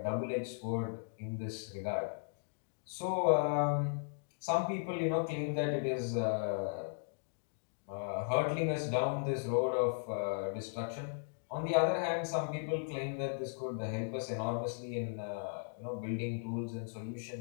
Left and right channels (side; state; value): right; silent; digital silence